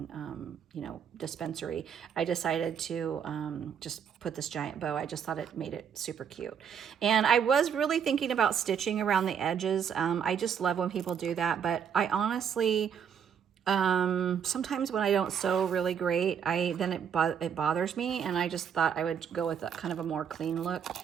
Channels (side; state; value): left; quieter; 7.8 dB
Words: you know, dispensary, I decided to just put this giant bow. I just thought it made it super cute. And I was really thinking about stitching around the edges. I just love when people do that, but I honestly, sometimes when I don't sew really great, then it bothers me, and I just thought I would go with a kind of a more clean look,